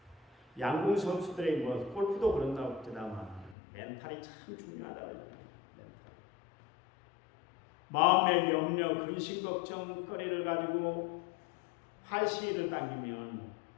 양궁 선수들이 골프도 그런다고 그러다만 멘탈이 참 중요하다고 그러잖아요. 마음의 염려, 근심, 걱정거리를 가지고 활시위를 당기면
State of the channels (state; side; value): drops out; right; at 3.6 s